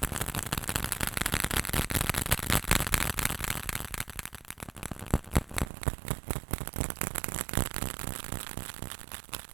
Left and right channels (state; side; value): drops out; left; at 5.7 s